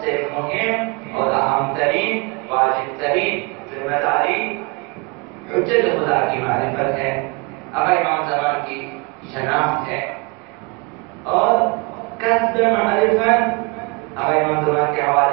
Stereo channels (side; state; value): left; quieter; 29.2 dB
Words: سے مہم اور اہم ترین واجب ترین ذمہ داری حجت خدا کی معرفت ہے، آقا امام زمان کی شناخت ہے اور کسب معرفت آقا امام زمان کے